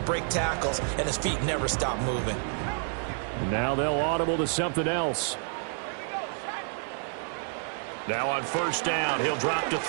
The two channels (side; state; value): left; silent; 56 dB below the other